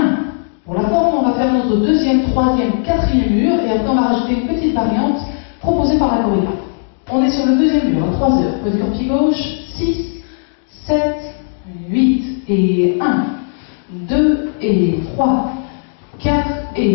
Pour la forme, on va faire notre deuxième, troisième, quatrième mur et après on va rajouter une petite variante proposée par la chorégraphe. On est sur le deuxième mur à 3 heures. Poids du corps pied gauche, 6, 7, 8 et 1, 2 et 3, 4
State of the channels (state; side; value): silent; right; digital silence